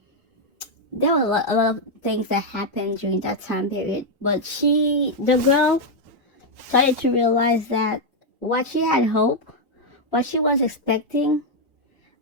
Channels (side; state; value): both; normal; correlation 0.00